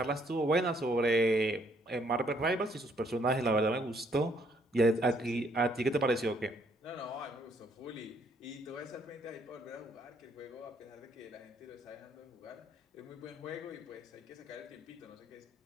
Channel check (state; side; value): normal; both; correlation 0.67